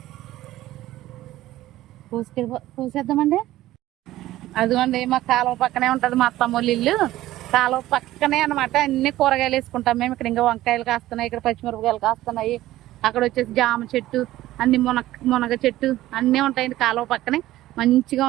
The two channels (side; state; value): left; quieter; 15.4 dB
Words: పూసేద్దామండి. అదిగోండి మా కాలువ పక్కనే ఉంటుంది మా అత్తమ్మోళ్ళ ఇల్లు. కాలువ పక్కనే అనమాట. అన్ని కూరగాయలు వేసుకుంటాం మేము. ఇక్కడ ఇంకా వంకాయలు కాస్తున్నాయి, ఇక్కడ పచ్చిమిరపకాయలు కాస్తున్నాయి. అక్కడ వచ్చేసి జామ చెట్టు, అన్ని మునగ చెట్టు అన్నీ ఉంటాయండి కాలువ పక్కనే. మంచిగా